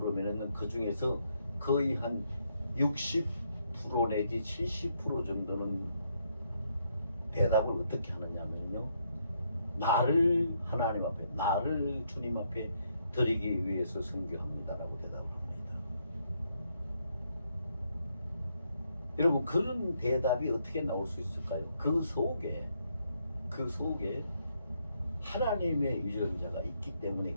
그 중에서 거의 한 60% 내지 70% 정도는 대답을 어떻게 하느냐면요, 나를 하나님 앞에, 나를 주님 앞에 드리기 위해서 선교합니다라고 대답을 합니다. 여러분, 그런 대답이 어떻게 나올 수 있을까요? 그 속에 하나님의 유전자가 있기 때문에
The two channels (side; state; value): both; inverted; correlation -0.75